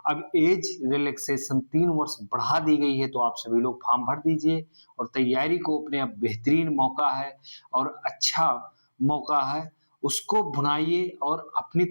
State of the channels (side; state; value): both; inverted; correlation -1.00